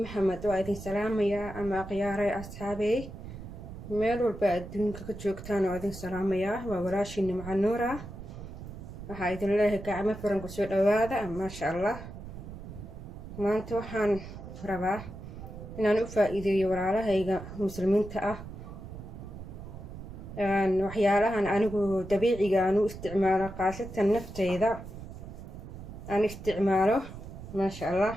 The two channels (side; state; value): right; noise; rumble, 12 dB below the sound